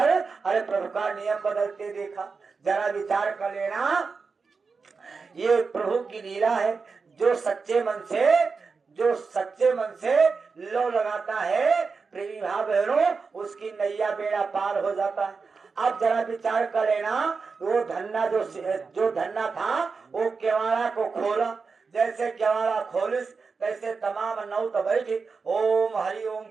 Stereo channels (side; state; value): left; quieter; 4.8 dB